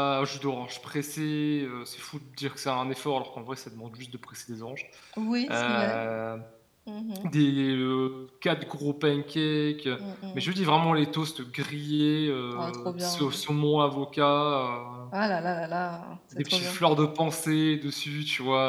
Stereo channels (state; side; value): identical; both; correlation 1.00